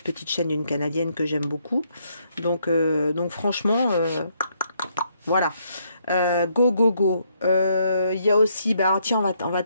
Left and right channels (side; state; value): both; inverted; correlation -0.73